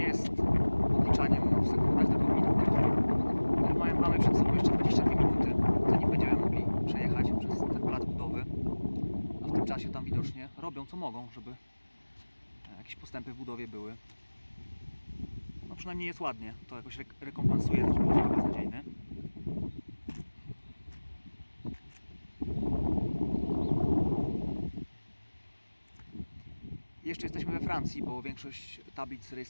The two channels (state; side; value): inverted; both; correlation -1.00